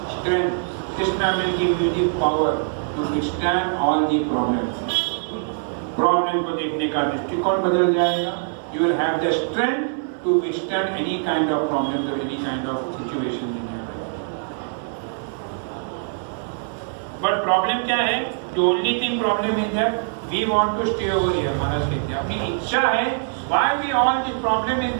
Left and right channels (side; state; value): left; silent; 63 dB below the other